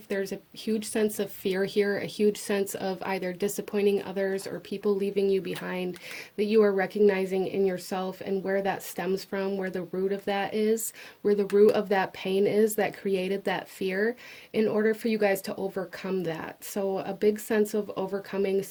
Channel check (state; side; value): identical; both; correlation 1.00